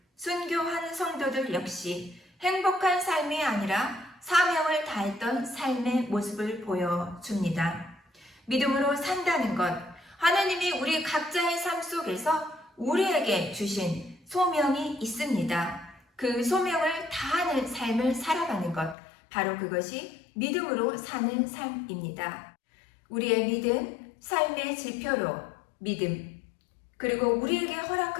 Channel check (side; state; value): right; drops out; at 18.9 s